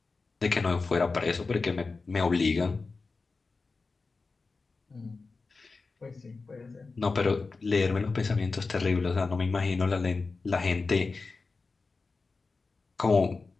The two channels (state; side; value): quieter; right; 4.1 dB